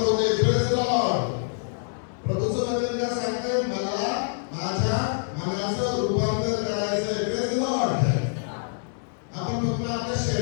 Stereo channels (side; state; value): right; silent; 61 dB below the other